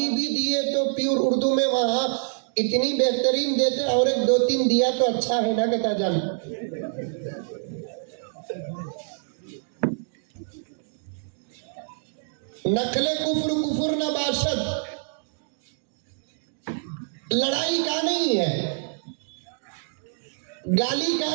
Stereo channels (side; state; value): left; silent; digital silence